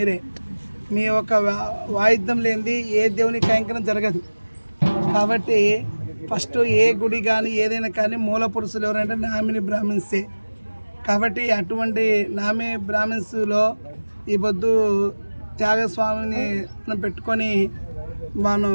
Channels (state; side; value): inverted; both; correlation -1.00